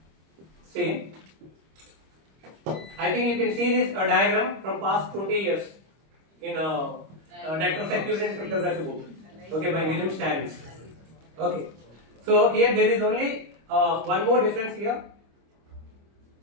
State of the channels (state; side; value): late; left; 25 ms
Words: same. I think you can see this diagram from past 20 years in network security and cryptography book. Okay, by William Stannis. Okay, so here there is only one more difference here.